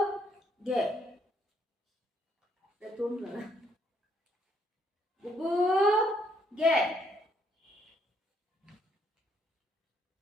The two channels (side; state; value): both; normal; correlation 0.70